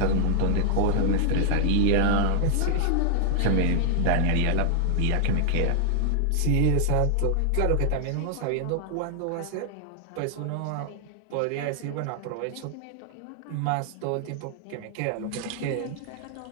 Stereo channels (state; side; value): different; both; correlation 0.00